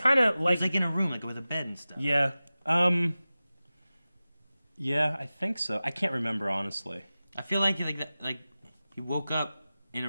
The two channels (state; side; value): inverted; both; correlation -0.96